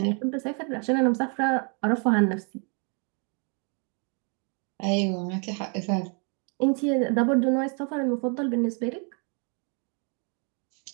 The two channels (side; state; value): left; quieter; 38.0 dB